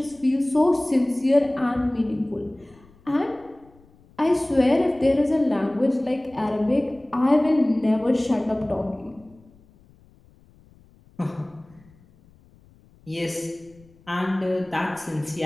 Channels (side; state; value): left; noise; rumble, 28 dB below the sound